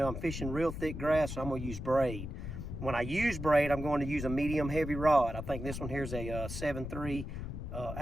I'm fishing real thick grass, so I'm gonna use braid. When I use braid, I'm going to use a medium heavy rod. I think this one here is a 7.3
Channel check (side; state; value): left; noise; rumble, 7 dB below the sound